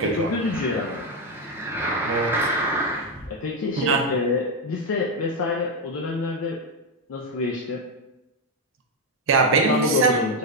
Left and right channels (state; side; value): normal; both; correlation 0.05